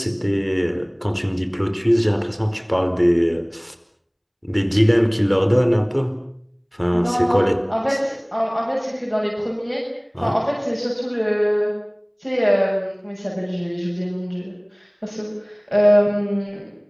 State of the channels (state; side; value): identical; both; correlation 1.00